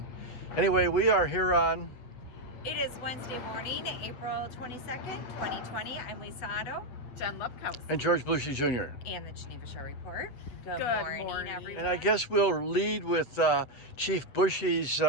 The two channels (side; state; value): right; late; 8.1 ms